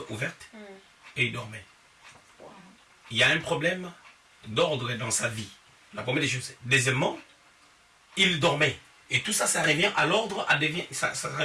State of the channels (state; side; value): identical; both; correlation 1.00